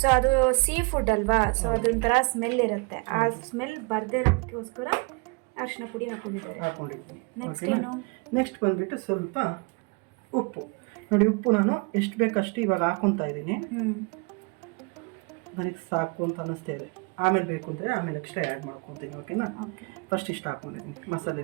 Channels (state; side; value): quieter; left; 32.3 dB